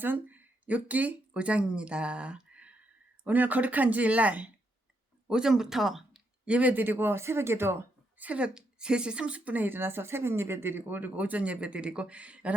욥기 5장입니다. 오늘 거룩한 주일날 오전부터 예배드리고 새벽에도 새벽 3시 30분에 일어나서 새벽 예배드리고 그리고 오전 예배드리고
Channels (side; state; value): both; normal; correlation 0.79